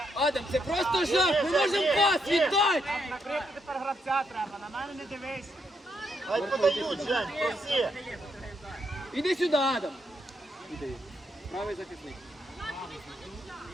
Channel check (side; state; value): both; normal; correlation 0.78